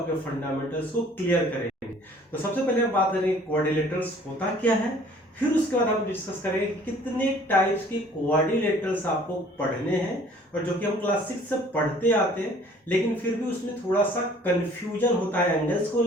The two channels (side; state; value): both; normal; correlation 0.54